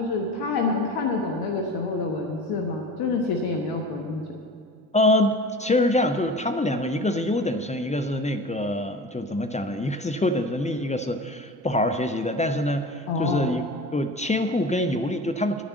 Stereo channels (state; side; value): normal; both; correlation 0.36